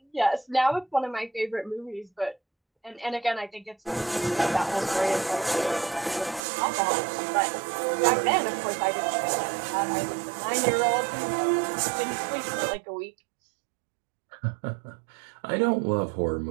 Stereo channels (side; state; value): left; drops out; at 6.4 s